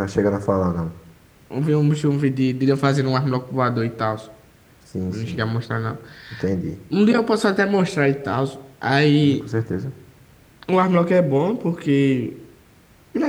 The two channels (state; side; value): identical; both; correlation 1.00